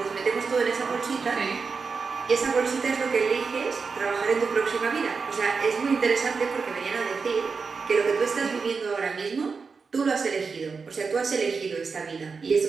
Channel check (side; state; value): left; quieter; 5.0 dB